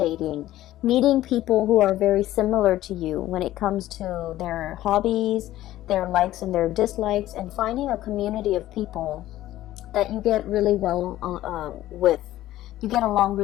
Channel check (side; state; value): right; quieter; 14.5 dB